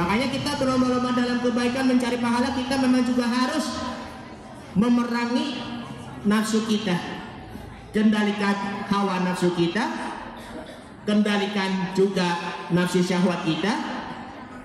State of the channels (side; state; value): both; identical; correlation 1.00